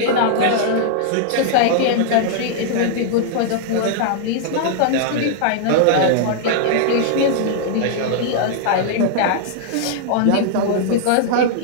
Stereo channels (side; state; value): both; different; correlation -0.01